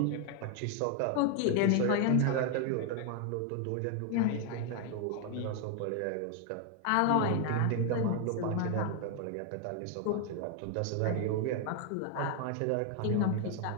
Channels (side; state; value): both; different; correlation 0.01